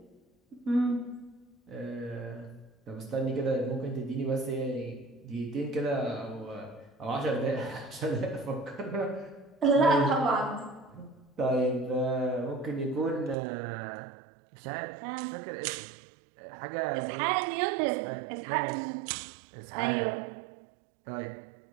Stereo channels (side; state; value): left; drops out; at 13.4 s